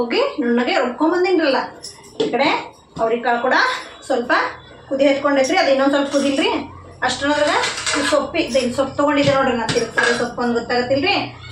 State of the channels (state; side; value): identical; both; correlation 1.00